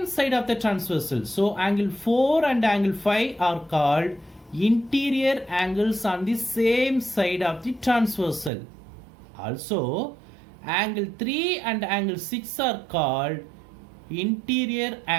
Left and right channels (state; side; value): drops out; left; at 8.5 s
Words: side of the transversal. So angle 4 and angle 5 are called interior angles on the same side of the transversal. Also, angle 3 and angle 6 are called interior